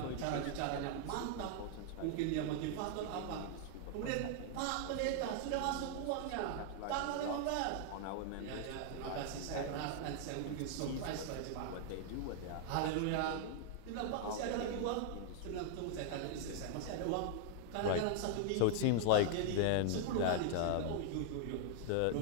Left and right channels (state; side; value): different; both; correlation 0.00